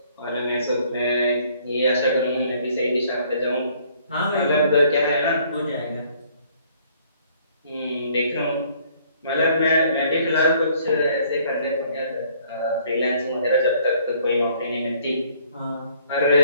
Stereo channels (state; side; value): inverted; both; correlation -0.61